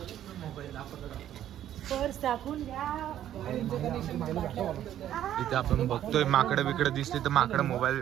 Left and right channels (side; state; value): left; quieter; 11.5 dB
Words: पर्स टाकून द्या. इथे आपण बघतोय माकडं बिकडं दिसते तर माकडं मोबाईल